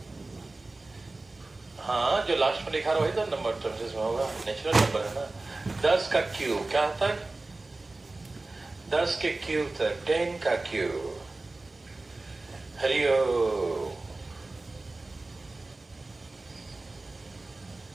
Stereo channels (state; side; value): quieter; left; 3.2 dB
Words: हाँ, जो लास्ट में लिखा वही तो नंबर टर्म्स में होगा, नेचुरल नंबर है ना। 10 का क्यूब क्या तक? 10 के क्यूब तक 10 का क्यूब। हरिओम।